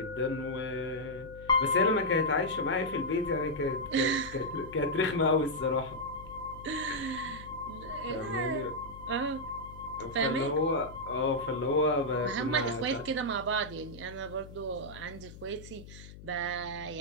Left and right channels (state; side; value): noise; left; hum, 16 dB below the sound